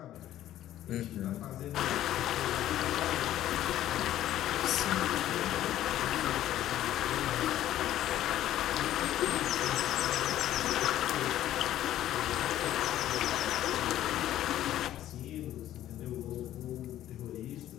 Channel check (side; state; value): right; quieter; 12.8 dB